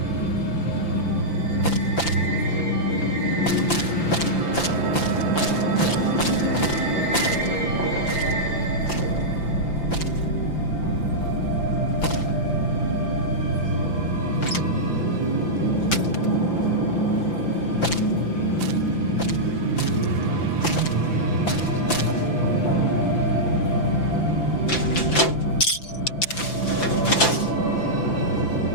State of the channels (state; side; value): late; right; 5.9 ms